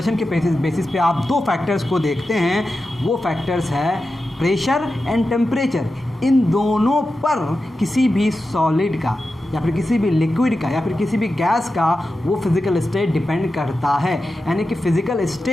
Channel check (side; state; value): both; normal; correlation 0.91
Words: के बेसिस पे आप दो फैक्टर्स को देखते हैं, वो फैक्टर्स है प्रेशर एंड टेम्परेचर। इन दोनों पर किसी भी सॉलिड का या फिर किसी भी लिक्विड का या फिर किसी भी गैस का वो फिजिकल स्टेट डिपेंड करता है। यानी कि physical